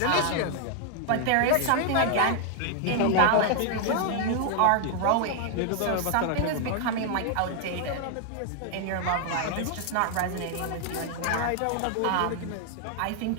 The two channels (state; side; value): different; both; correlation 0.00